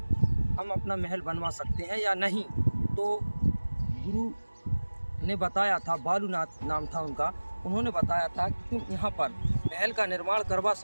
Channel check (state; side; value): inverted; both; correlation -1.00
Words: हम अपना महल बनवा सकते हैं या नहीं। तो गुरु ने बताया था, बालूनाथ नाम था उनका, उन्होंने बताया था कि तुम यहाँ पर महल का निर्माण करवा